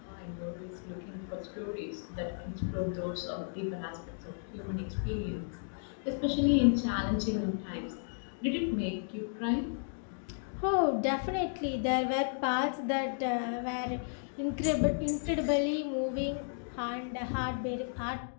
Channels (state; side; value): silent; right; digital silence